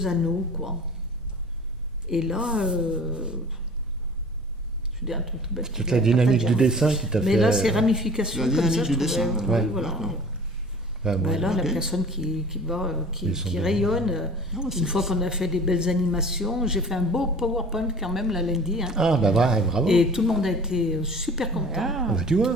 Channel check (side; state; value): both; normal; correlation 0.44